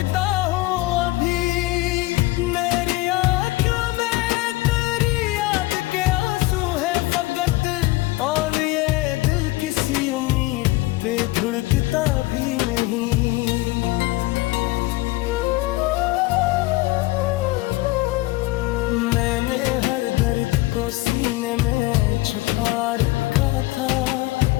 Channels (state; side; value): quieter; right; 20.1 dB